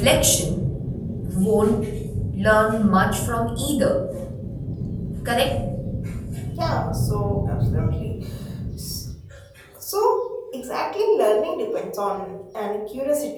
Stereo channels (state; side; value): identical; both; correlation 1.00